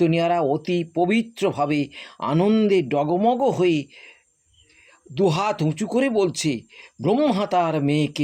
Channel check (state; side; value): identical; both; correlation 1.00